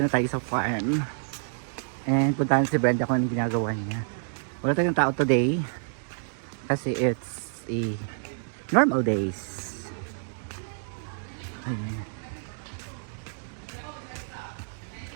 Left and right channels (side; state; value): left; silent; digital silence